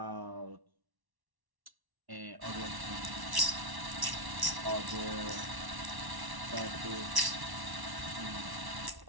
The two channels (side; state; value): left; late; 1.1 ms